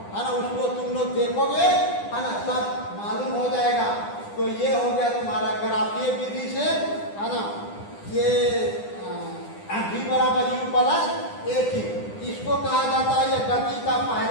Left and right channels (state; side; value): late; right; 9.9 ms